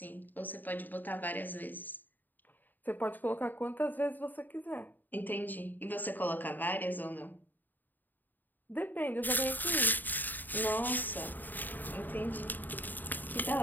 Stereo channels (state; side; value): late; right; 0.088 ms